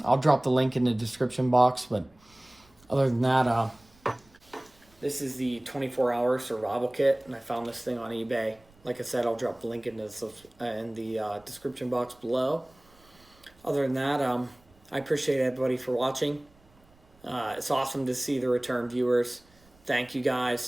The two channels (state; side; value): noise; right; rumble, 30 dB below the sound